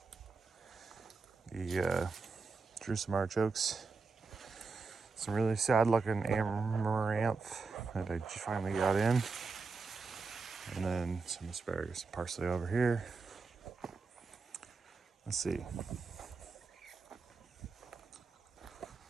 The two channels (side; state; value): left; quieter; 4.4 dB